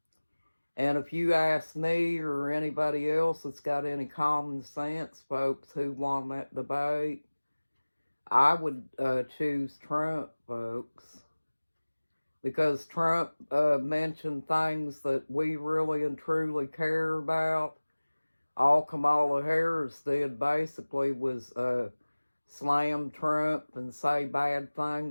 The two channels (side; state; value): both; inverted; correlation -1.00